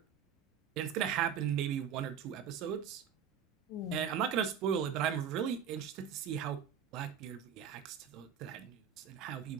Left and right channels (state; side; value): quieter; left; 8.0 dB